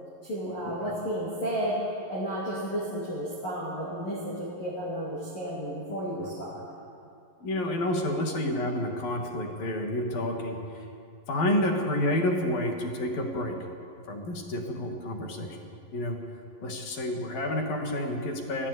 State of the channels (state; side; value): late; right; 11 ms